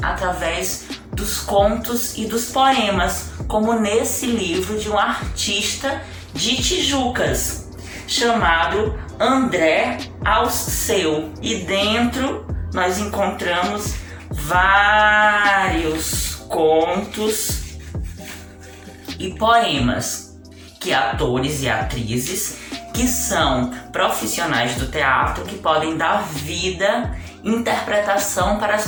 através dos contos e dos poemas, como nesse livro de um artista de Tijucas, chamado André Alceu. E dentro nós encontramos vários contos e poemas que atores e atrizes que são profissionais do teatro que podem dar vida, interpretação para as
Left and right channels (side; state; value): both; identical; correlation 1.00